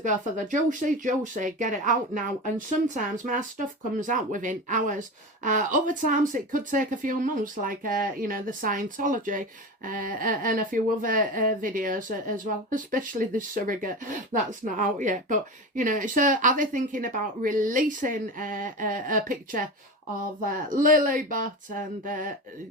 go for the juicy, get it out now. And sometimes my stuff comes out within hours. Other times it could take a few months, like, you know, the Scientology and a few other videos as well, especially the surrogate. That's not out yet. But, you know, so are they thinking about releasing a picture of Lilybet and,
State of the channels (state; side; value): normal; both; correlation 0.26